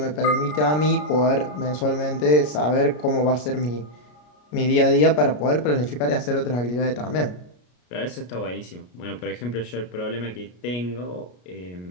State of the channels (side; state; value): right; late; 33 ms